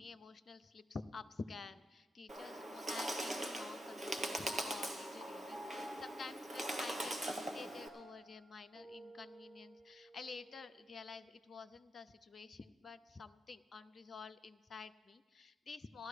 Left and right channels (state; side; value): normal; both; correlation 0.83